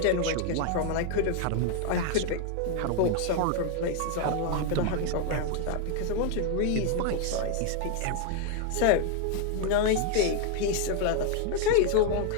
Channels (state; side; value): different; both; correlation 0.00